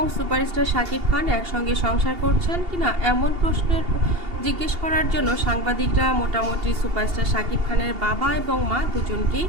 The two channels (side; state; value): left; late; 2.8 ms